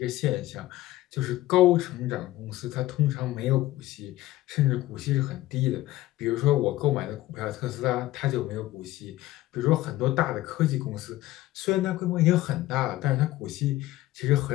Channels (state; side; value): quieter; right; 16.4 dB